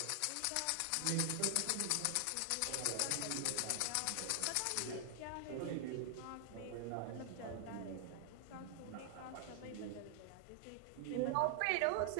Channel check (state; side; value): different; both; correlation 0.00